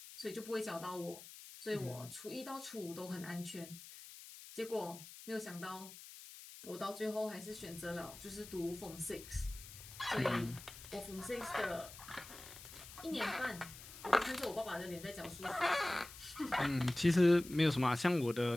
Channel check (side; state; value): left; noise; hiss, 15 dB below the sound